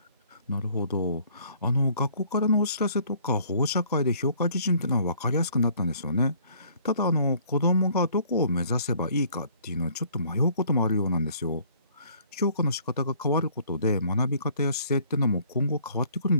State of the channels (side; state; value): both; inverted; correlation -0.59